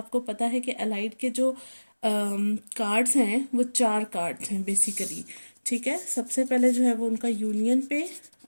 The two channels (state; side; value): inverted; both; correlation -1.00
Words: पता है कि अलाइट के जो कार्ड्स हैं वो 4 कार्ड्स हैं बेसिकली। ठीक है, सबसे पहले जो है वो उनका यूनियन पे